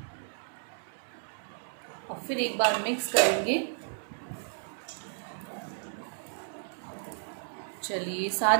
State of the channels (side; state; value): left; silent; 56 dB below the other